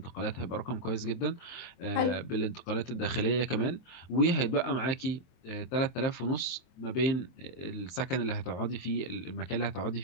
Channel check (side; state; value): right; late; 23 ms